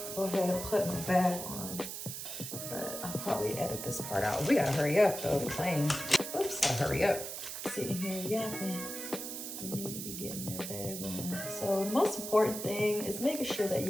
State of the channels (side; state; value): right; noise; hiss, 7 dB below the sound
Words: go ahead and put my bag on, but I'll probably edit this part out. We gotta hurry up though, the plane. Oops, gotta hurry up. Sitting here yapping. We need to be getting that bag on. So the most important thing is making sure that